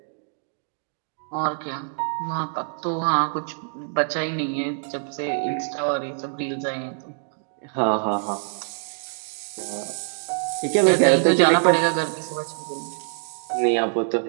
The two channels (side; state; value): left; silent; digital silence